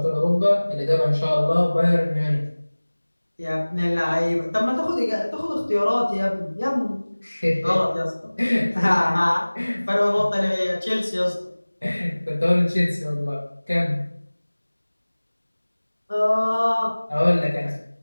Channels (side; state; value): both; inverted; correlation -1.00